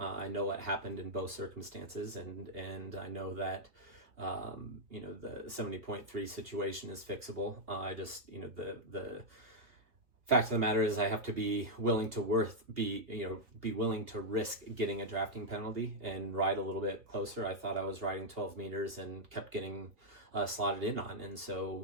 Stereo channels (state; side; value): late; left; 2.8 ms